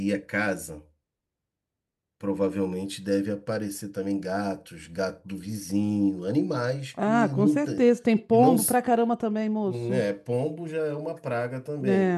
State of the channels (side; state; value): both; identical; correlation 1.00